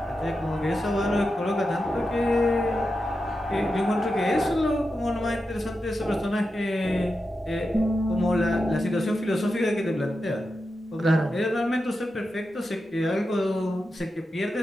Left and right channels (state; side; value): normal; both; correlation 0.89